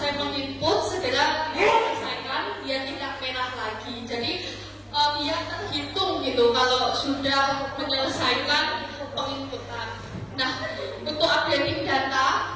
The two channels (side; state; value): both; identical; correlation 1.00